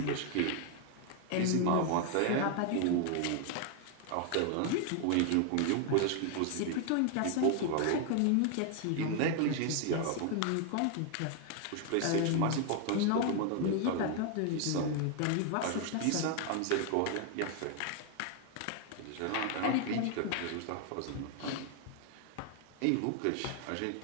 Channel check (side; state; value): both; different; correlation 0.00